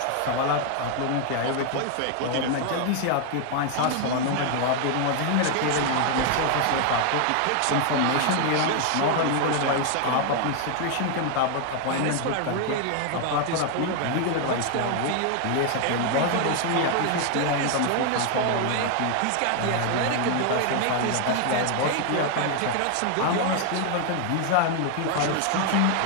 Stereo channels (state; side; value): different; both; correlation 0.00